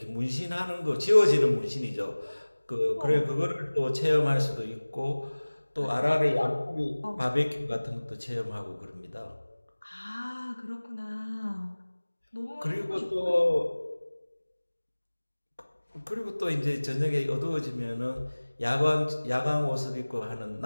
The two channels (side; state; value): both; inverted; correlation -1.00